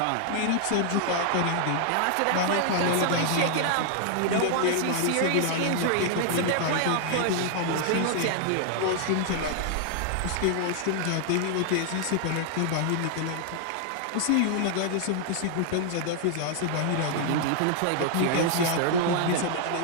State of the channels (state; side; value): different; both; correlation 0.00